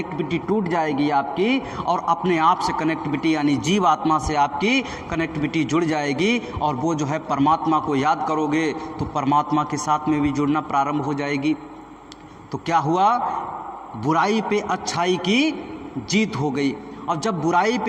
टूट जाएगी आपकी, और अपने आप से कनेक्टिविटी यानी जीव आत्मा से आपकी कनेक्टिविटी जुड़ जाएगी। और वो जो है परमात्मा को याद करोगे तो परमात्मा के साथ में भी जुड़ना प्रारंभ हो जाएगी। तो क्या हुआ? बुराई पे अच्छाई की जीत हो गई। अब जब बुराई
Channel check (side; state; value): both; identical; correlation 1.00